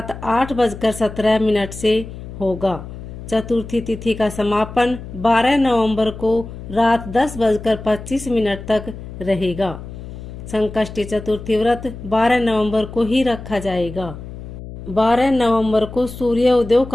8:17 से होगा। चतुर्थी तिथि का समापन 12 नवंबर को रात 10:25 तक रहेगा। संकष्टी चतुर्थी व्रत 12 नवंबर को ही रखा जाएगा। 12 नवंबर को सूर्योदय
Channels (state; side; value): noise; left; hum, 12 dB below the sound